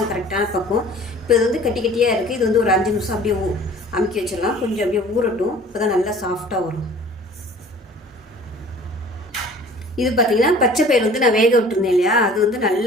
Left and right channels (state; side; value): normal; both; correlation 0.48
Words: கரெக்டான பக்கம். இப்போ இது வந்து கட்டி கட்டியாக இருக்குது. இது வந்து ஒரு 5 நிமிஷம் அப்படியே அமுக்கி வச்சிடலாம். கொஞ்சம் அப்படியே ஊறட்டும். இப்போ தான் நல்லா சாஃப்டாக வரும். இது பார்த்தீங்கன்னா பச்சை பயிர் வந்து நான் வேக விட்டுருந்தேன் இல்லையா, அது வந்து